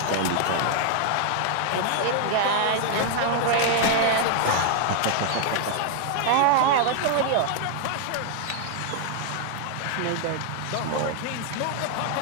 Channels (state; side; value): different; both; correlation 0.00